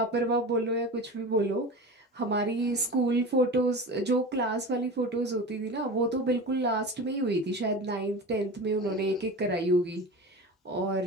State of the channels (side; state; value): both; normal; correlation 0.31